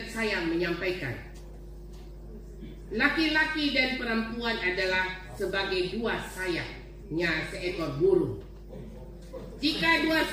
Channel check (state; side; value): identical; both; correlation 1.00